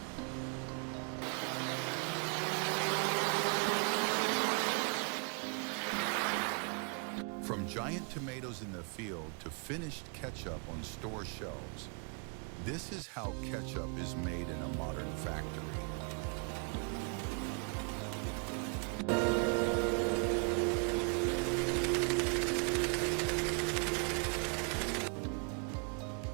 From giant tomatoes in the field to finished ketchup on store shelves, this is how ketchup is made in a modern factory.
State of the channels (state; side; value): quieter; left; 37.6 dB